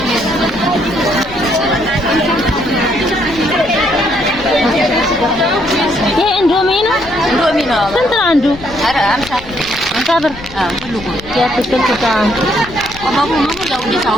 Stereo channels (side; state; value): left; noise; rumble, 17 dB below the sound